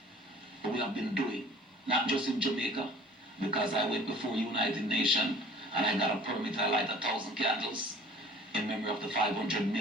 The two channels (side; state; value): both; normal; correlation 0.48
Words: we have been doing, not just in Jamaica, because I went before United Nations and I got a permit to light 1,000 candles in memory of the 500